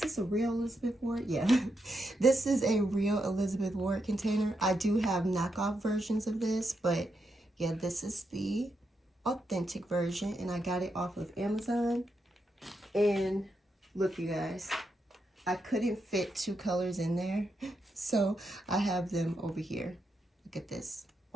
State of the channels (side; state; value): both; normal; correlation 0.83